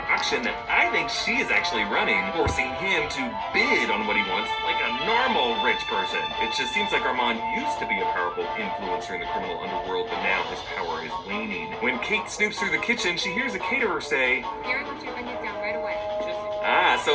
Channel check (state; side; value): identical; both; correlation 1.00